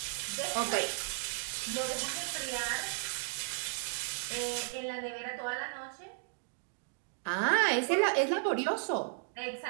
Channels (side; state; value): left; silent; digital silence